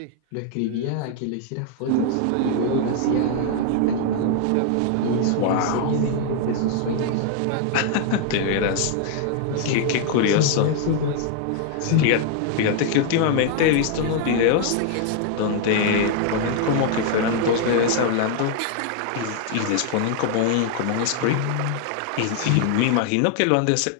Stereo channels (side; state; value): both; different; correlation 0.00